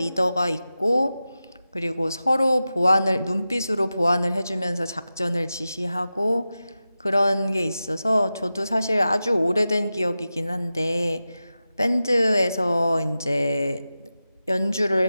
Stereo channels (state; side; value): inverted; both; correlation -0.93